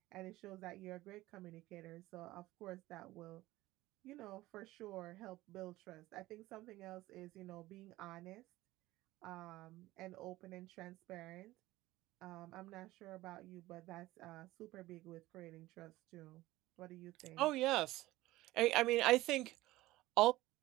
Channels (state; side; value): quieter; left; 17.7 dB